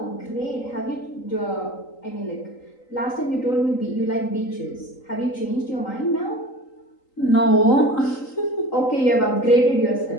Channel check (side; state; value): right; late; 3.8 ms